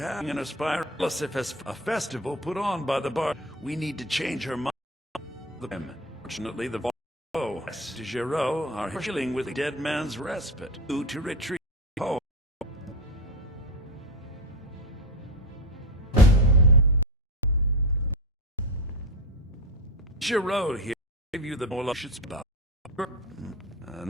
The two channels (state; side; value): normal; both; correlation 0.21